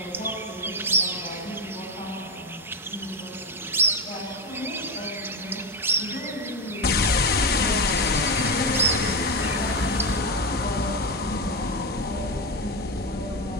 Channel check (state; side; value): normal; both; correlation 0.12